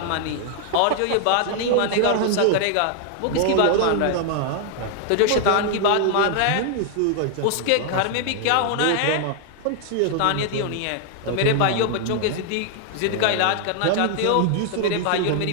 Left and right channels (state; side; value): different; both; correlation 0.00